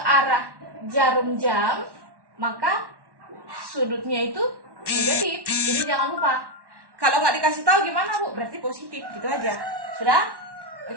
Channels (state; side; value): late; left; 1.1 ms